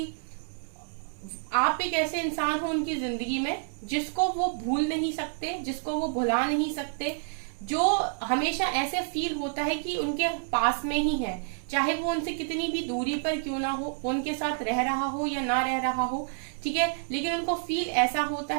आप एक ऐसे इंसान हो उनकी जिंदगी में जिसको वो भूल नहीं सकते, जिसको वो भुला नहीं सकते, जो हमेशा ऐसे फील होता है कि उनके पास में ही है, चाहे वो उनसे कितनी भी दूरी पर क्यों ना हो, उनके साथ रह रहा हो या ना रह रहा हो। ठीक है, लेकिन उनको फील ऐसा होता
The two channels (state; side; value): silent; left; digital silence